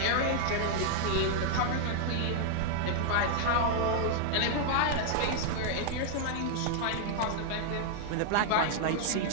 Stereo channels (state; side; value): different; both; correlation 0.00